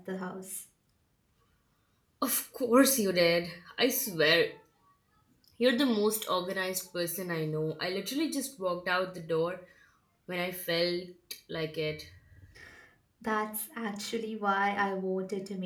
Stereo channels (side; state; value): both; identical; correlation 1.00